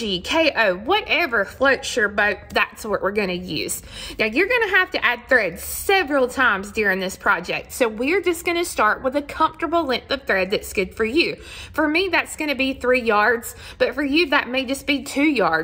KO, whatever floats your boat, that's what we're going to use. Now, you're going to have to add thread several times during this project. So we're just going to start with a comfortable length of thread that's good for you. For me, that's going to be 3 yards, but for you, that may just be 2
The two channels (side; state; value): both; identical; correlation 1.00